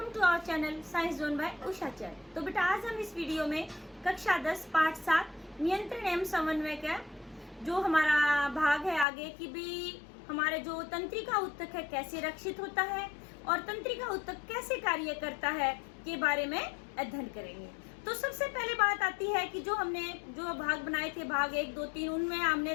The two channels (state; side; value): drops out; right; at 9.1 s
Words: to our channel science zone by Usha Chain. तो बेटा आज हम इस वीडियो में कक्षा 10 पाठ 7 नियंत्रण एवं समन्वय का जो हमारा भाग है आगे कि भी हमारे जो तंत्रिका ऊतक है कैसे रक्षित होता है और तंत्रिका ऊतक कैसे कार्य करता है के बारे में अध्ययन करेंगे। तो सबसे पहले बात आती है कि जो हमने जो भाग बनाए थे भाग 1, 2, 3 उनमें